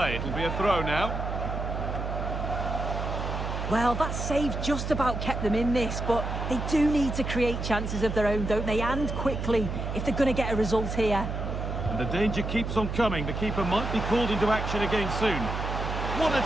It'll be a throw now. Well, that save just about kept them in this, but they do need to create chances of their own, don't they? And quickly, if they're going to get a result here. And the danger keeps on coming. The keeper might be called into action again soon. What a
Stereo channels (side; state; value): right; noise; hum, 4 dB below the sound